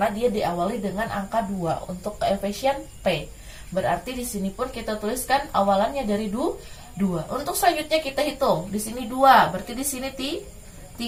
dia diawali dengan angka 2 untuk koefisien P. Berarti di sini pun kita tuliskan awalannya dari 2. Untuk selanjutnya kita hitung. Di sini 2, berarti di sini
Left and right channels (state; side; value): identical; both; correlation 1.00